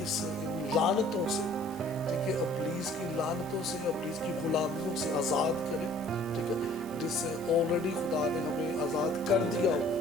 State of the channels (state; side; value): normal; both; correlation 0.54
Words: لعنتوں سے, ٹھیک ہے, ابلیس کی لعنتوں سے, ابلیس کی غلامیوں سے آزاد کرے, ٹھیک ہے, جس سے آلریڈی خدا نے ہمیں آزاد کر دیا